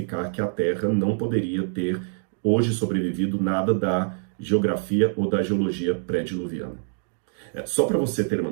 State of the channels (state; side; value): silent; left; digital silence